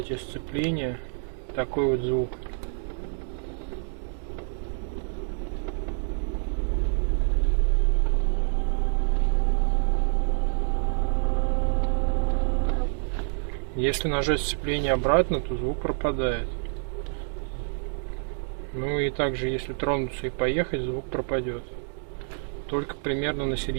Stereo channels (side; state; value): left; silent; digital silence